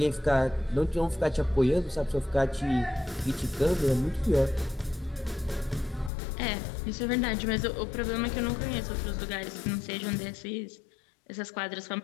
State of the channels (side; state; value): right; drops out; at 6.1 s